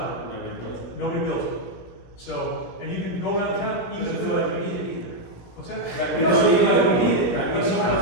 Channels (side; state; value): right; late; 17 ms